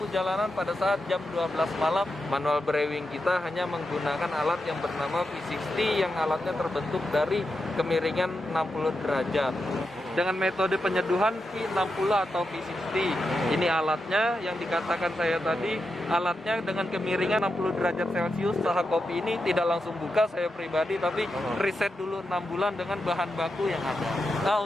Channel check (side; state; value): both; normal; correlation 0.87